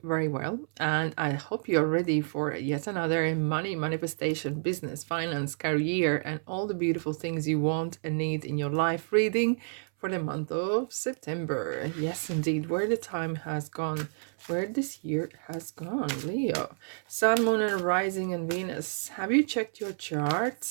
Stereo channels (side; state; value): left; silent; 58 dB below the other